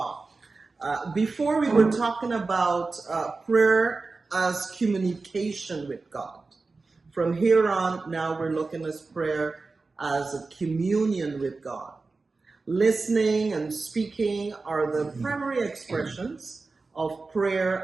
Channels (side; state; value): left; quieter; 3.9 dB